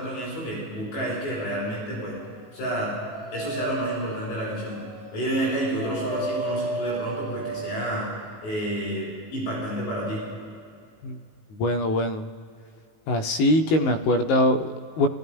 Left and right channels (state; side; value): late; right; 19 ms